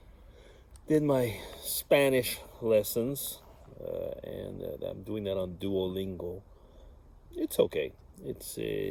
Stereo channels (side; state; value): both; identical; correlation 1.00